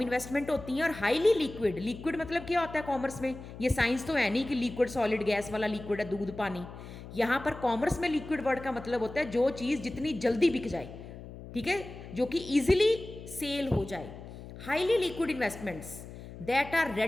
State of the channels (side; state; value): left; noise; hum, 14 dB below the sound